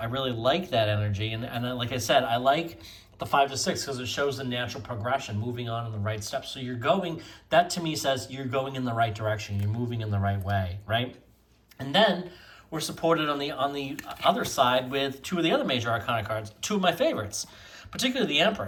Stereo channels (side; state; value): both; identical; correlation 1.00